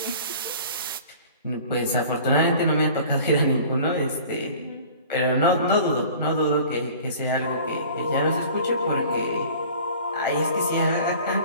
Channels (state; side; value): inverted; both; correlation -0.45